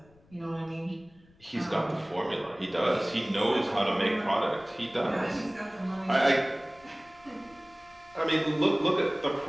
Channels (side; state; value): left; noise; rumble, 29 dB below the sound